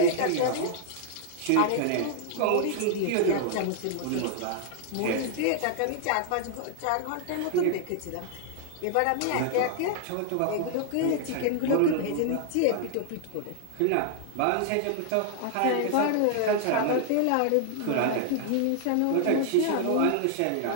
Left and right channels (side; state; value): both; different; correlation 0.00